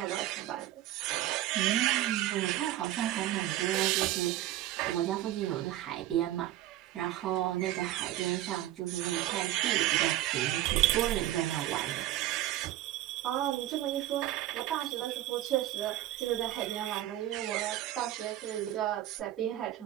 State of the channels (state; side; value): quieter; left; 14.0 dB